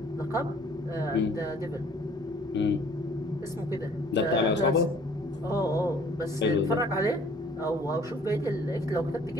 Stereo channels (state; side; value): normal; both; correlation 0.55